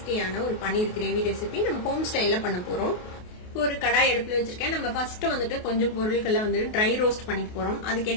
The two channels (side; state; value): right; late; 28 ms